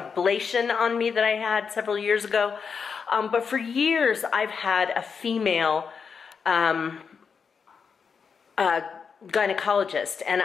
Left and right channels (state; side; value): quieter; right; 6.0 dB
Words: on me that I had several years ago. But for years, I've had a female gynecologist, and